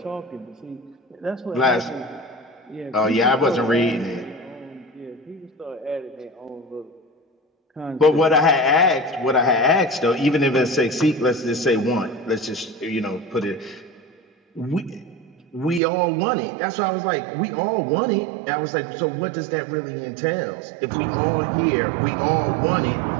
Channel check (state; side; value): drops out; left; at 15.8 s